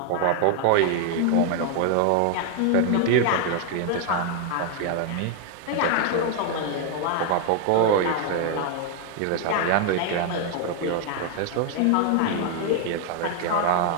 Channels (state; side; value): different; both; correlation 0.00